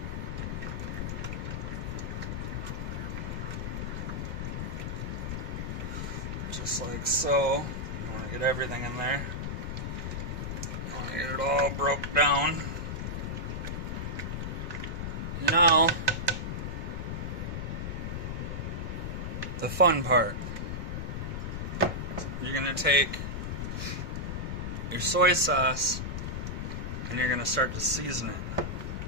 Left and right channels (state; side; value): noise; left; rumble, 3 dB below the sound